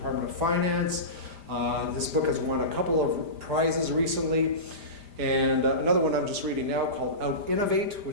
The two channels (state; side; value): late; left; 5.0 ms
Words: of Finance. This book has won a couple of prizes recently. And another one I'm just reading now called Out-Innovate,